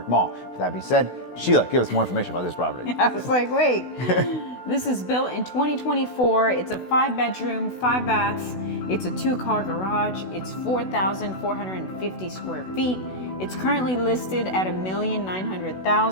Mall. With that being said, Sheila, give us more information about this property. I was like, wait. This is built in 2024. It's a 5-bedroom, 5 baths. It's a 2-car garage. It's 4,450 square feet. It's currently listed at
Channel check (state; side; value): late; right; 16 ms